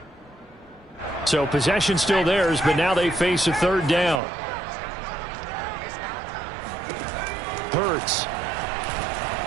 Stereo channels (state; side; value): drops out; left; at 4.2 s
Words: So possession still theirs, but now they face a 3rd down. Hurts.